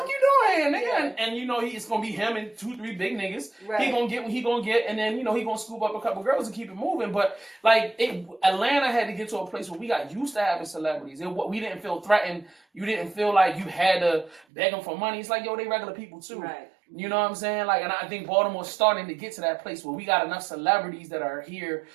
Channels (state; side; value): drops out; left; at 14.5 s